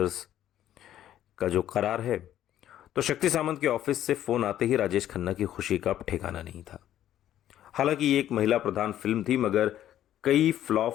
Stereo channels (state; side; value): quieter; right; 11.9 dB